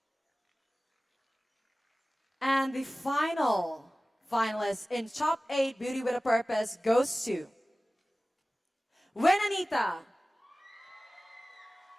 And the final finalist in top 8 Beauty with a Purpose goes to Wenanita.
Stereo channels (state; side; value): normal; both; correlation 0.97